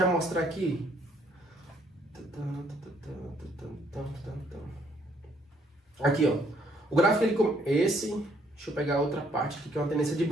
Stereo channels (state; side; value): normal; both; correlation 0.67